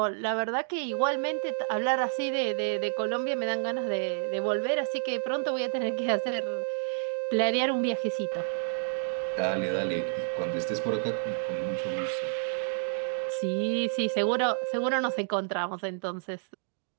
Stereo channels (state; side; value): silent; left; digital silence